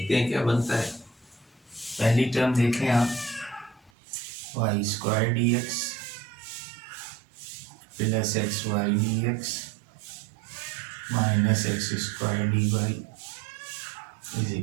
हैं क्या बनता है। पहली टर्म देखें आप, Y square D X plus X Y D X minus X square D Y is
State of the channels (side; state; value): left; drops out; at 3.9 s